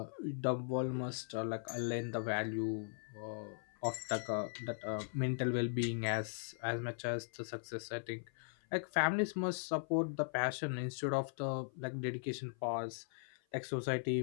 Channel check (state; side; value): silent; right; 52 dB below the other